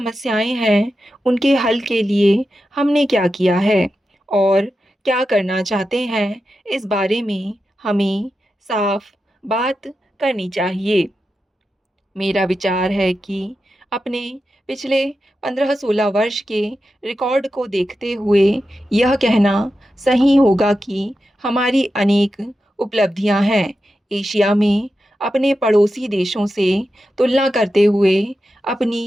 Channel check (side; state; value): both; normal; correlation 0.90